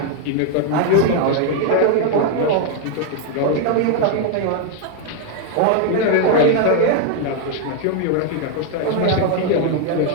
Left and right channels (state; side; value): different; both; correlation 0.00